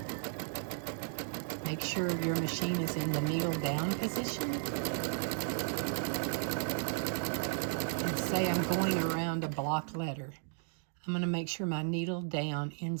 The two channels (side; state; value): left; silent; digital silence